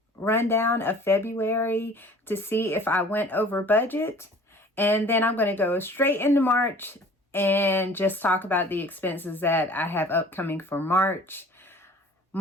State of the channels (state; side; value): normal; both; correlation 0.48